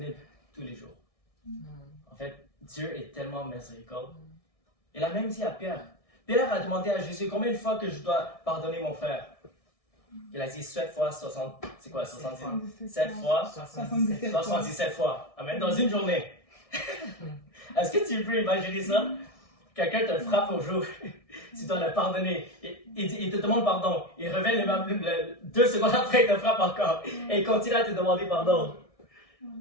tous les jours. En fait, Dieu est tellement miséricorde. Il a même dit à Pierre. Pierre a demandé à Jésus combien de fois que je dois pardonner mon frère. Il a dit 7 fois 60. C'est quoi 70? 7 fois 77 fois. Amen. Dans une journée. Est-ce que tu peux imaginer ça? Quelqu'un te frappe au jour, tu dois le pardonner. Il te demande pardon. Il revient 2 secondes après, il te frappe encore. Et il continue à te demander pardon.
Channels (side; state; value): right; late; 1.6 ms